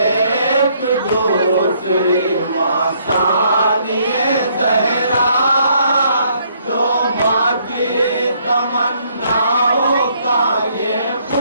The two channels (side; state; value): both; inverted; correlation -0.68